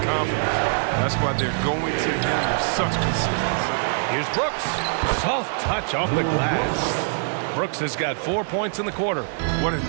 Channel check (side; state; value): left; silent; 60 dB below the other